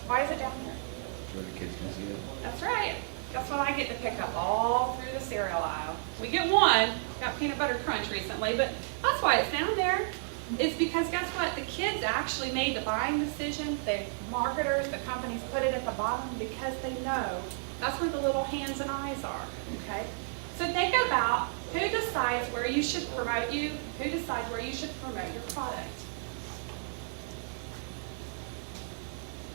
Why is it down here? Where the kids can see it. That's right. Guess what I get to pick up all through the cereal aisle? We get one, got peanut butter crunch recently, but that's why it's down there. It's because guess what? The kids actually made the buying decision. The marketers, the companies put it at the bottom because they know that's where the little hands and eyes are, okay? So think about who decides where you should promote you, who decides where you should promote your product.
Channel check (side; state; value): left; silent; digital silence